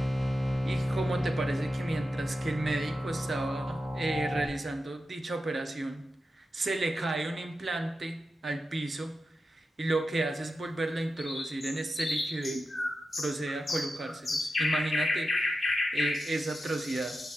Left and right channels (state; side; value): normal; both; correlation 0.90